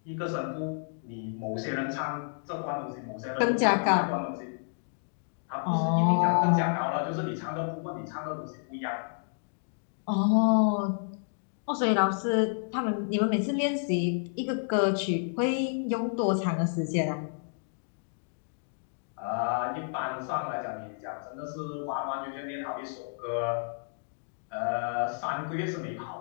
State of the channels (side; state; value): right; silent; digital silence